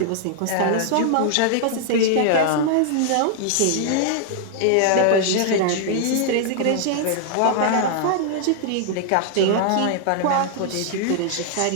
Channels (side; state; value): both; different; correlation -0.01